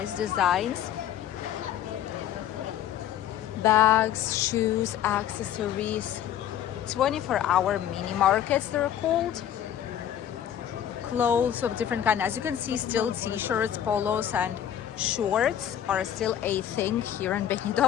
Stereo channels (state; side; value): quieter; right; 10.6 dB